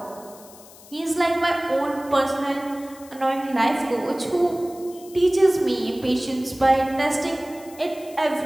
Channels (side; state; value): left; noise; hiss, 21 dB below the sound